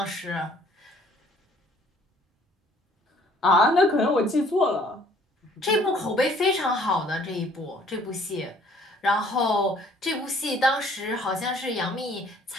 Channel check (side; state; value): both; normal; correlation 0.58